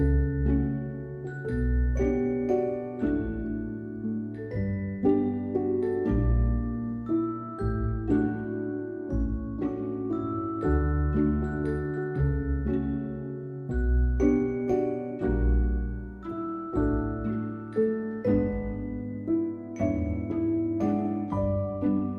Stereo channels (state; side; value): identical; both; correlation 1.00